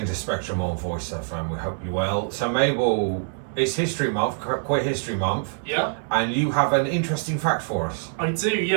to Spectrum on Voice FM. We hope you're well. So Mabel, it's History Month, Queer History Month. Yeah. And you have an interesting fact for us. I do,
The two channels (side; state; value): left; silent; 62 dB below the other